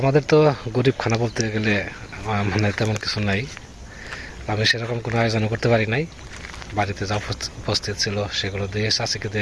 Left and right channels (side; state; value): both; identical; correlation 1.00